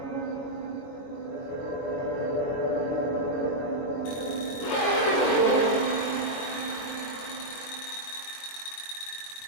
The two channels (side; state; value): right; late; 22 ms